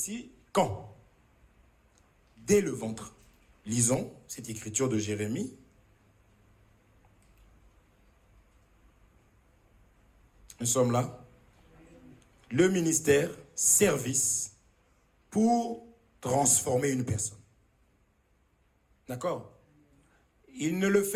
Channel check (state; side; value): identical; both; correlation 1.00